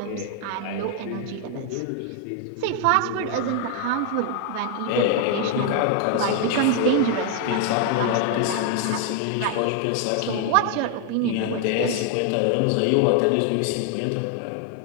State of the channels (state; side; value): different; both; correlation 0.00